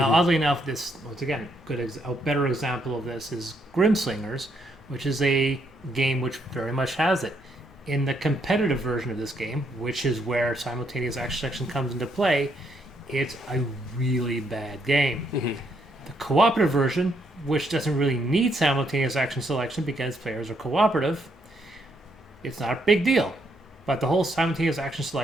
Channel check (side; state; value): both; normal; correlation 0.74